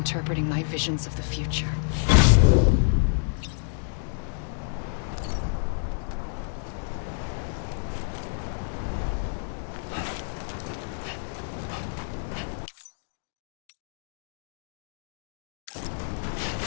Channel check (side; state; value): right; silent; digital silence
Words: my visions of the future.